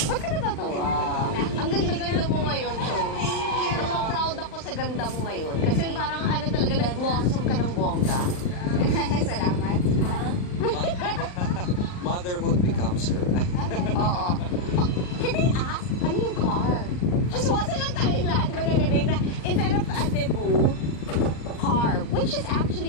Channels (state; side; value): late; right; 39 ms